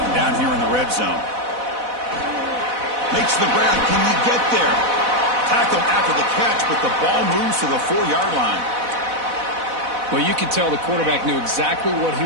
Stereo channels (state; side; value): late; left; 4.0 ms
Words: down here in the red zone. Makes the ground. Can he get there? Tackled after the catch, but the ball moves to the 4-yard line. Well, you could tell the quarterback knew exactly what he